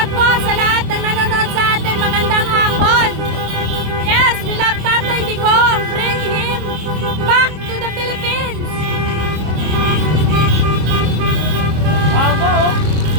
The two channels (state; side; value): late; left; 26 ms